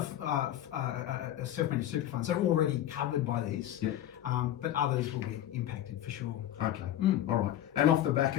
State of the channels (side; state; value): right; quieter; 12.2 dB